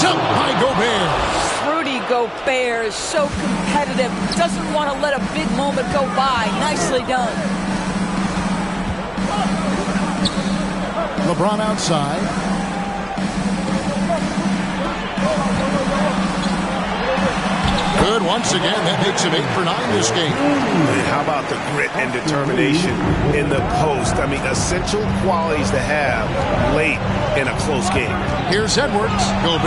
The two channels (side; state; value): both; identical; correlation 1.00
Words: by Gobert. Rudy Gobert is so competitive. Doesn't want to let a big moment go by. Nicely done. LeBron outside. Good once again. That makes him 8 for 9 this game. And how about the grit and determination in the post? I mean, essential qualities to have late in a close game. Here's Edwards.